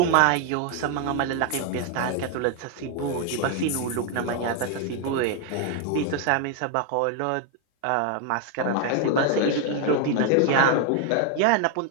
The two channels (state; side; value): different; both; correlation 0.01